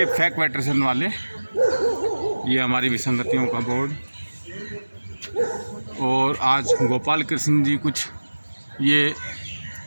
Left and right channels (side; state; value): both; inverted; correlation -1.00